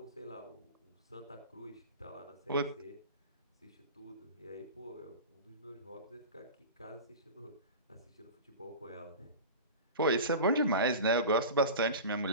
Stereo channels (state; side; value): inverted; both; correlation -0.31